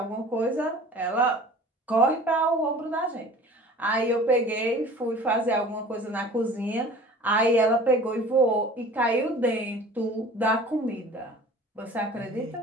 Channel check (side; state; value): both; normal; correlation 0.44